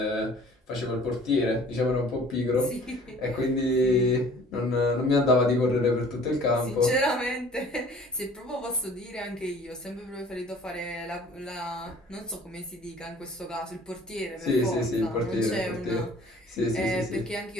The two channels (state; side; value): normal; both; correlation 0.50